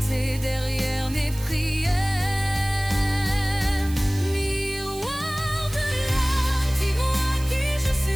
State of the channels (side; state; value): right; noise; hiss, 16 dB below the sound